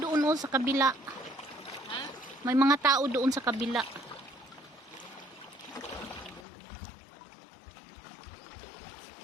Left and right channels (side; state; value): right; drops out; at 6.5 s